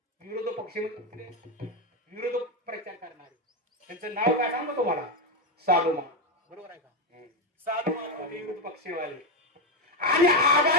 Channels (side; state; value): both; normal; correlation 0.08